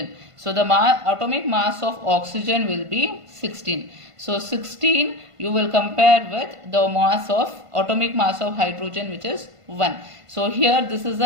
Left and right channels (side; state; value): left; late; 1.5 ms